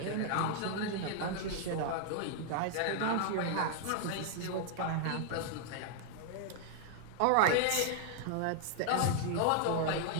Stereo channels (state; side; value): different; both; correlation 0.00